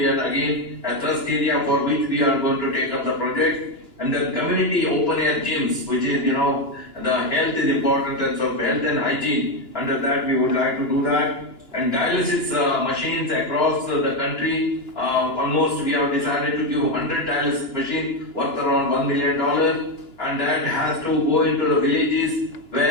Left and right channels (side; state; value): right; late; 2.9 ms